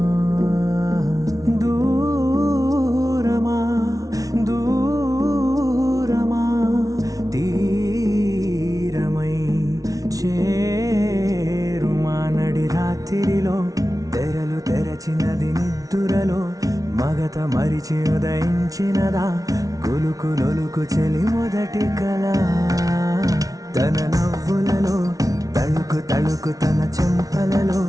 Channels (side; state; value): left; late; 0.18 ms